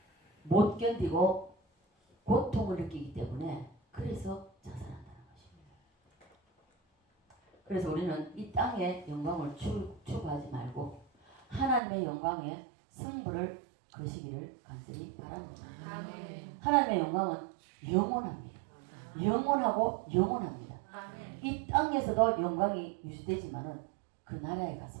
못 견디고 고통을 느끼기 때문에 그래서 자살한다는 것입니다. 그래서 우리는 이 땅의 영광을 추구하지 말고 하나님의 영광에 승부를 거시기를 간절히 바랍니다. 하나님의 영광은 영원합니다. 영원하고 영원합니다. 이 땅에서도 영광이 유지되지만은 그 나라에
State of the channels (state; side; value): drops out; left; at 11.8 s